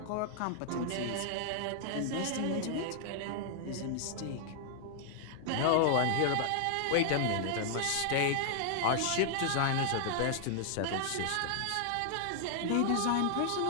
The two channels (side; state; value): both; different; correlation 0.00